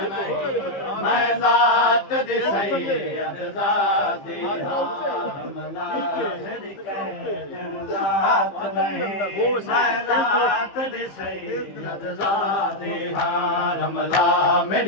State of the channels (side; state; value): right; late; 15 ms